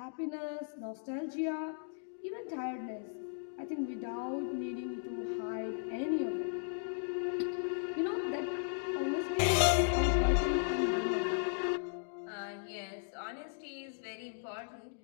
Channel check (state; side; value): silent; right; digital silence